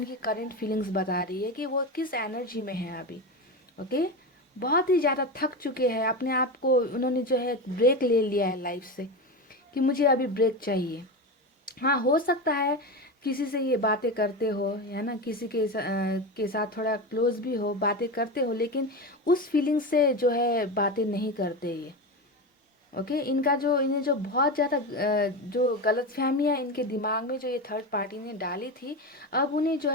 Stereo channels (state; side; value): normal; both; correlation 0.20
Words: करंट फीलिंग्स बता रही है कि वो किस एनर्जी में है अभी। ओके, बहुत ही ज़्यादा थक चुके हैं, अपने आप को उन्होंने जो है ब्रेक ले लिया है लाइफ से, कि मुझे अभी ब्रेक चाहिए। हाँ, हो सकता है किसी से ये बातें करते हो, है ना, किसी के साथ थोड़ा क्लोज भी हो, बातें करते हो, लेकिन उस फीलिंग से जो है बातें नहीं करते ये। ओके, इनका जो इन्हें जो बहुत ज़्यादा जो गलतफहमियां इनके दिमाग में जो ये थर्ड पार्टी ने डाली थी, अब उन्हें जो